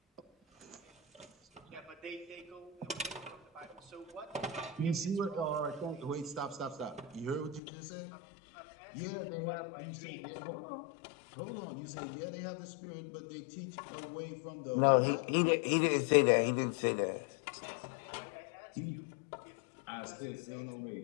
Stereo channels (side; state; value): right; drops out; at 7.6 s